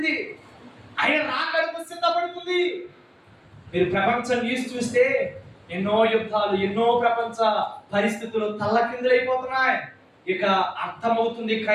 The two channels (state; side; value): identical; both; correlation 1.00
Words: ఆయన రాకడకు సిద్ధపడుతుంది. మీరు ప్రపంచం న్యూస్ చూస్తే ఎన్నో యుద్ధాలు, ఎన్నో ప్రపంచ పరిస్థితులు తల్లకిందులైపోతున్నాయి. ఇక అర్థమవుతుంది